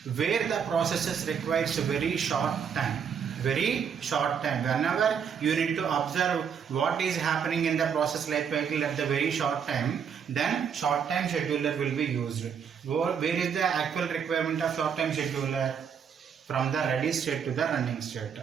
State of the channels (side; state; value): left; quieter; 7.2 dB